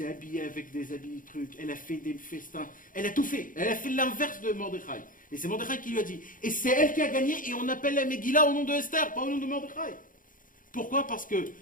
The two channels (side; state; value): right; late; 0.39 ms